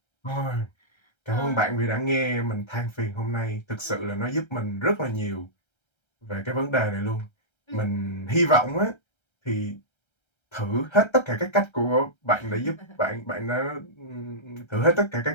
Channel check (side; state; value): right; late; 1.3 ms